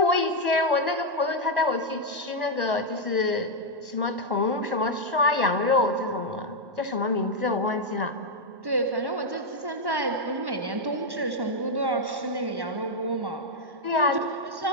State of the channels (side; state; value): left; late; 1.1 ms